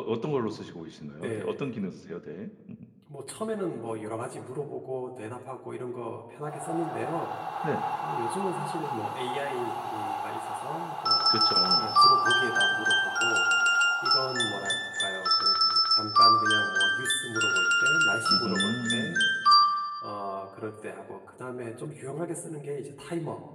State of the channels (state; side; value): identical; both; correlation 1.00